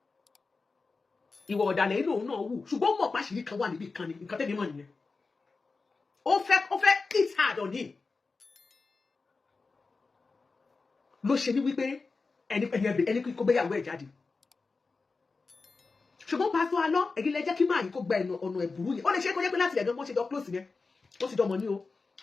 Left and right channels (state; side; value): quieter; right; 4.1 dB